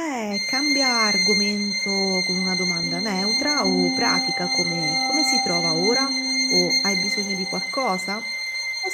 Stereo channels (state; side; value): identical; both; correlation 1.00